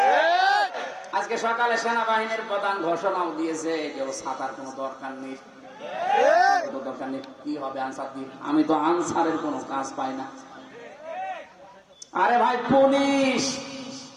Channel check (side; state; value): both; identical; correlation 1.00